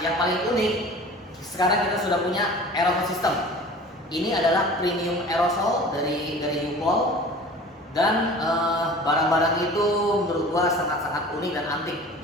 yang paling unik sekarang kita sudah punya aerosol system. Ini adalah premium aerosol dari U-POL dan barang-barang itu menurut gua sangat-sangat unik dan antik.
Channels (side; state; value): both; normal; correlation 0.42